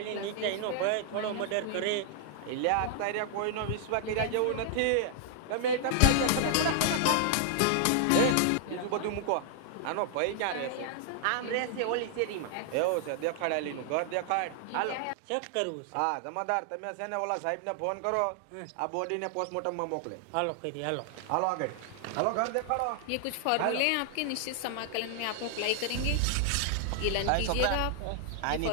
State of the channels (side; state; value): both; different; correlation 0.00